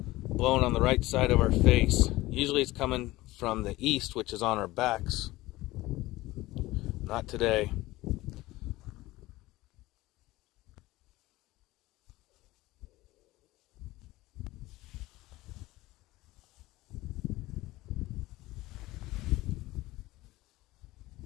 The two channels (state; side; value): quieter; right; 18.5 dB